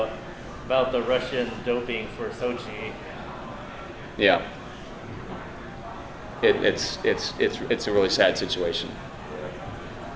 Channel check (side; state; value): both; identical; correlation 1.00